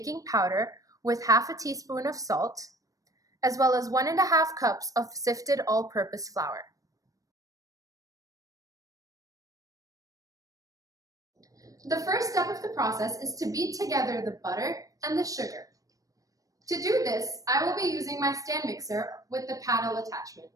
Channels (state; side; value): late; left; 0.16 ms